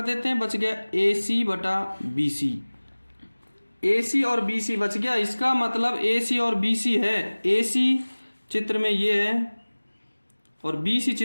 देते हैं, बच गया ए सी बटा बी सी। ए सी और बी सी बच गया, इसका मतलब ए सी और बी सी है। ए सी चित्र में ये है और बी सी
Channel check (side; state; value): both; inverted; correlation -1.00